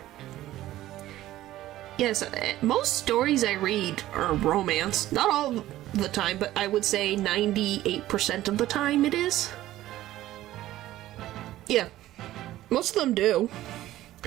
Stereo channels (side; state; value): left; quieter; 14.8 dB